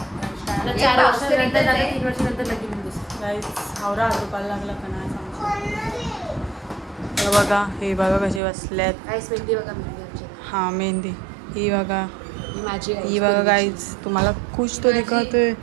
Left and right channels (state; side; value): drops out; left; at 8.4 s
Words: 4 वर्षानंतर 3 वर्षानंतर लगीन गाईस हावरा दुपार लागला का नाही सांगू बघा हे बघा कसे बसल्यात गाईस मेहंदी बघा मेहंदी आमची हां मेहंदी ही बघा माझी ही बघा गाईज तुम्हाला खुश तो दिखतोय